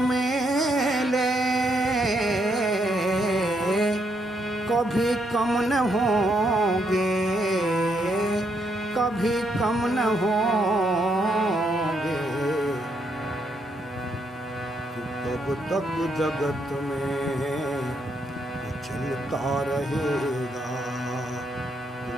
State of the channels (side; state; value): both; normal; correlation 0.76